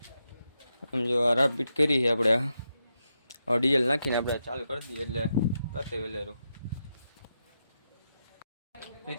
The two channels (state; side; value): inverted; both; correlation -0.85